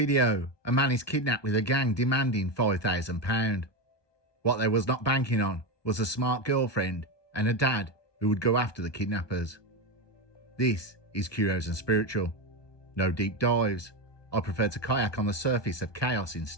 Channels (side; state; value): right; late; 1.2 ms